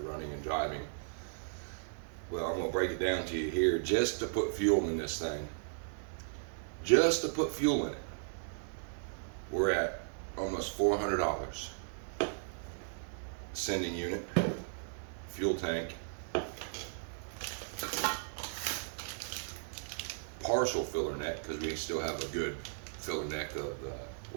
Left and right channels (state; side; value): silent; left; digital silence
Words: running and driving. Well, I'm gonna break it down to you here. Just to put fuel in this thing, just to put fuel in it, we're at almost $400. Sending unit, fuel tank, partial filler neck, because we still have a good filler neck of